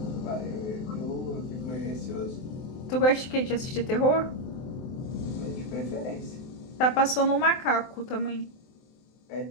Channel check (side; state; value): right; late; 23 ms